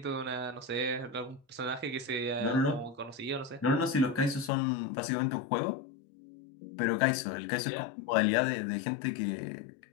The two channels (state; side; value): drops out; right; at 4.5 s